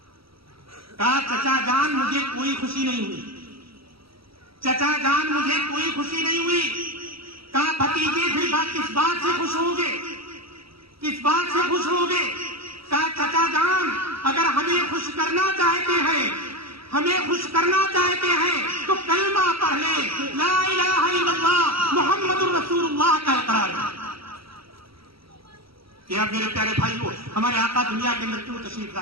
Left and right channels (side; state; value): left; late; 0.75 ms